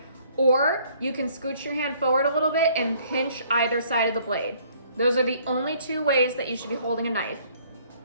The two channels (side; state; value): both; inverted; correlation -0.61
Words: or you can scooch your hand forward a little bit and pinch either side of the blade. Those are the only two ways that you should be holding a knife.